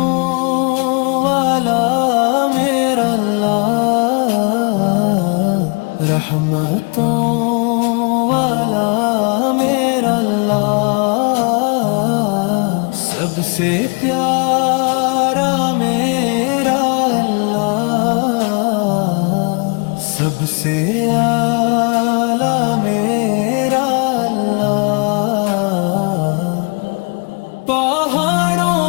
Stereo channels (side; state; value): right; quieter; 33.0 dB